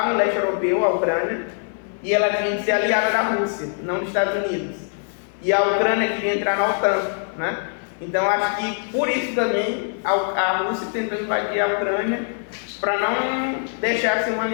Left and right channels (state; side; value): silent; right; 60 dB below the other